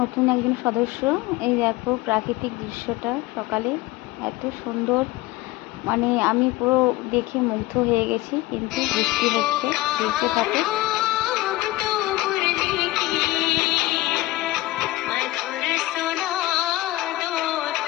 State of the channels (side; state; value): right; quieter; 18.1 dB